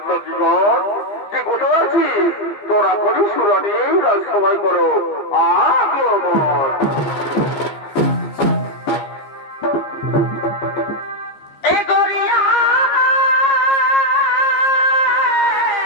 যে কোথায় আছিস তোরা করি সুরানি রাজসভায় করো আগমন।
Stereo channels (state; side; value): late; right; 15 ms